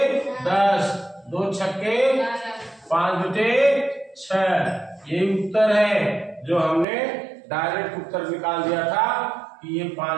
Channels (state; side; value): drops out; left; at 6.9 s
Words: 10, 2 छक्के 5/6, ये उत्तर है जो हमने डायरेक्ट उत्तर निकाल दिया था कि ये